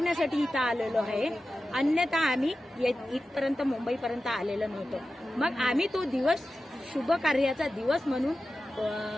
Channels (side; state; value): both; normal; correlation 0.93